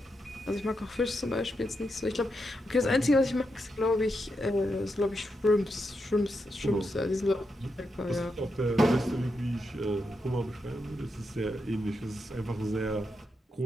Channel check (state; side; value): normal; both; correlation 0.84